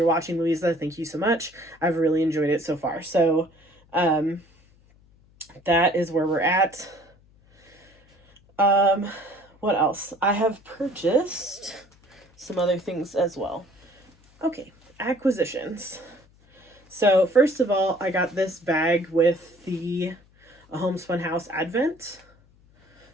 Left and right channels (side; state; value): left; noise; hum, 30 dB below the sound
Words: watching, Louisa, thank you so much. I've really enjoyed it so far. So that is where we're at. What else? I have purchased some other things as well. Okay, acquisitions. So first of all, I got this bag with the Homespun House Advent.